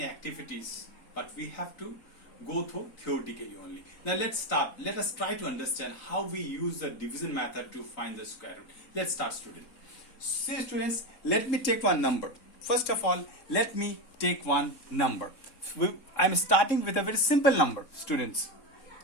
activities, but we have to go through theoretically only. Now let's start. Let us try to understand how we use the division method to find the square root. Let's start, students. See students, let me take one number. First of all, let me take one number. I'm starting with a very simple number, students.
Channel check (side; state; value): right; late; 3.7 ms